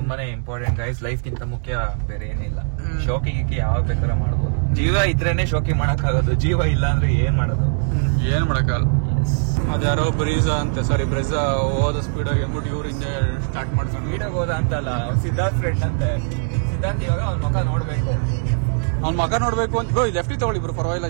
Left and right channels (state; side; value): silent; left; digital silence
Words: ಇಂಪಾರ್ಟೆಂಟ್ ಗೈಸ್. ಲೈಫ್ ಗಿಂತ ಮುಖ್ಯ ಬೇರೆ ಏನಿಲ್ಲ. ಶೋಕಿಗೆ ಯಾವ ಬೇಕಾದ್ರೆ ಮಾಡ್ಬೋದು. ಜೀವ ಇದ್ರೇನೆ ಶೋಕಿ ಮಾಡಕ್ ಆಗೋದು, ಜೀವ ಇಲ್ಲ ಅಂದ್ರೆ ಏನ್ ಮಾಡೋದು, ಏನ್ ಮಾಡಕ್ಕಾಗಲ್ಲ. ಅದ್ಯಾರೋ ಬ್ರೀಜಾ ಹೋದ ಸ್ಪೀಡ್ ಆಗಿ ಅಂದ್ಬಿಟ್ಟು ಇವ್ರು ಹಿಂದೆ ಸ್ಟಾರ್ಟ್ ಮಾಡ್ಕೊಂಡು ಸ್ಪೀಡಾಗಿ ಹೋದ ಅಂತಲ್ಲ, ಸಿದ್ಧಾರ್ಥ್ ಫ್ರೆಂಡ್ ಅಂತೆ. ಸಿದ್ಧಾರ್ಥ್ ಇವಾಗ ಅವ್ನ ಮಗ ನೋಡ್ಬೇಕು, ಅವ್ನ ಮಗ ನೋಡ್ಬೇಕು ಅಂತ. ಬ್ರೋ ಲೆಫ್ಟಿ ತಗೊಳ್ಳಿ ಬ್ರೋ, ಪರವಾಗಿಲ್ಲ,